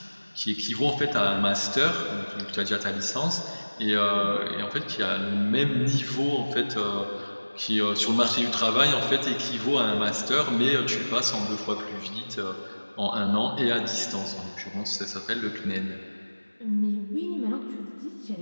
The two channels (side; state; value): both; inverted; correlation -1.00